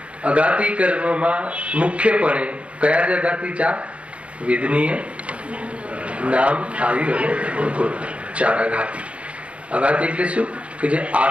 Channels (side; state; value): left; late; 0.062 ms